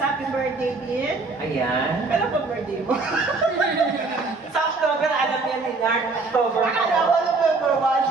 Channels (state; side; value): quieter; left; 3.8 dB